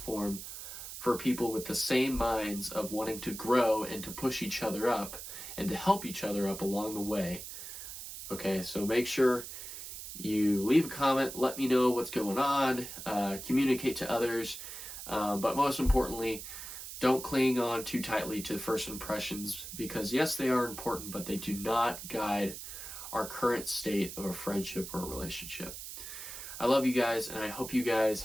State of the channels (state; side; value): noise; right; hiss, 10 dB below the sound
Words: for people with the same minds of wanting to grow and to push each other up and to help each other up along the way. Okay, so make sure you leave a comment, let me know what's going on, communicate to others, but most importantly, don't cling on too tightly to first impressions, because yes, they are important, but they do not guide our current state of a friendship or a relationship. I love you guys, and I hope you guys